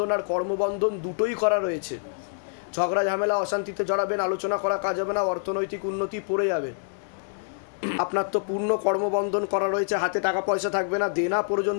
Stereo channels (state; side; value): silent; right; digital silence